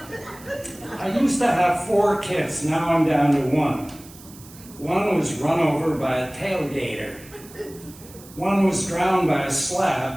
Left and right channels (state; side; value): noise; right; hiss, 20 dB below the sound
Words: I used to have 4 kids, now I'm down to 1. One was run over by a tailgater. One was drowned by a